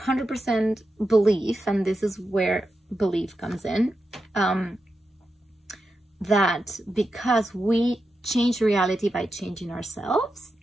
believe, and this is where belief comes in, that because we change reality by changing ourselves,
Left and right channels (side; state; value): both; normal; correlation 0.88